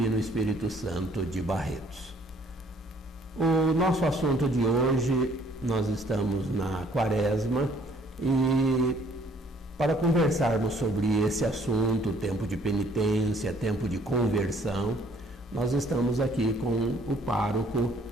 Espírito Santo de Barretos. O nosso assunto de hoje, nós estamos na Quaresma e para conversarmos sobre esse assunto, tempo de penitência, tempo de conversão, nós estamos aqui com o pároco,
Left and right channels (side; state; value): both; normal; correlation 0.61